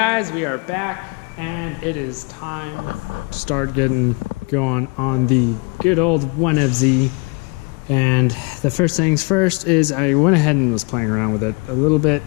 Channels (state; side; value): quieter; right; 30.7 dB